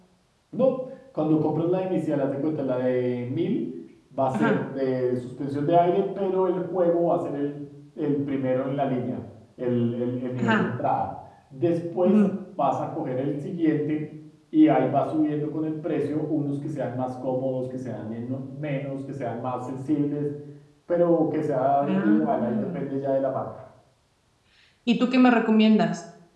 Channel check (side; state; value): both; identical; correlation 1.00